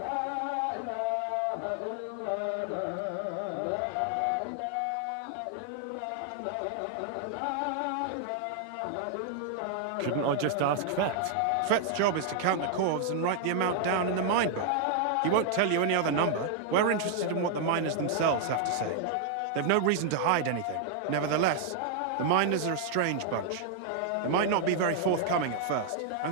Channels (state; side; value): different; both; correlation 0.00